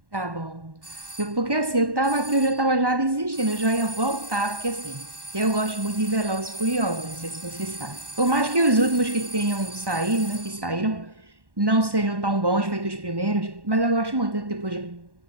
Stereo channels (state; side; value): late; left; 1.1 ms